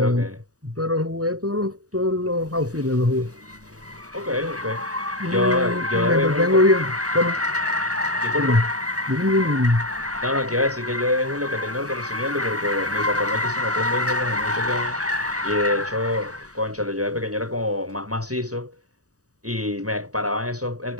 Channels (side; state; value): left; late; 0.66 ms